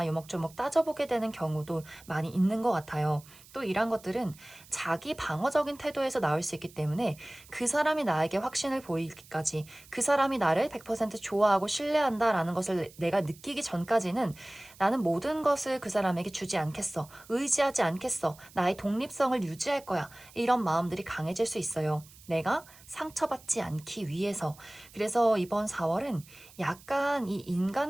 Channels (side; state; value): right; noise; hiss, 23 dB below the sound